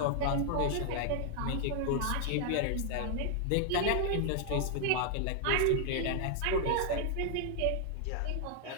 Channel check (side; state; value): both; different; correlation 0.00